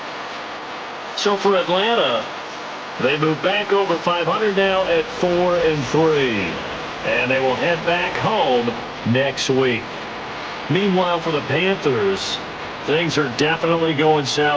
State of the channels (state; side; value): identical; both; correlation 1.00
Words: So for Atlanta, they move back over 500 now at 4-3. And they will head back home next week. Meanwhile, for the Panthers, things are definitely going